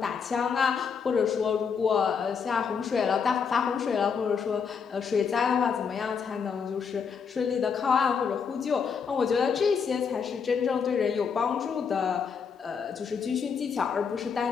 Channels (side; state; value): right; quieter; 6.3 dB